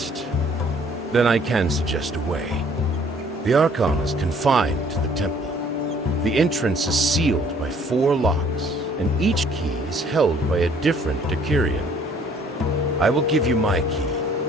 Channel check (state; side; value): normal; both; correlation 0.59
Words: then I can suggest a way. The Archon is confined to the temple. The entrance is sealed by 4 locks, and each key is held by a different Decurion. I will give you my